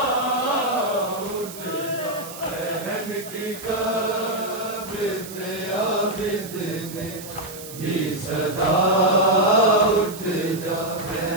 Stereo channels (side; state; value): right; noise; hiss, 13 dB below the sound